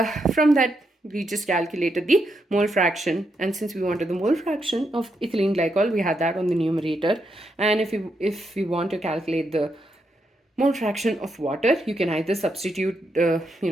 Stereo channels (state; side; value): normal; both; correlation 0.81